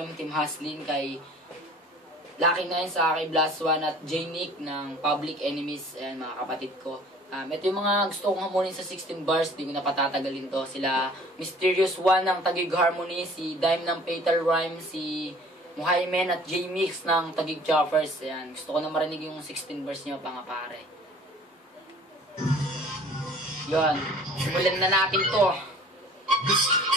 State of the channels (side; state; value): both; normal; correlation 0.49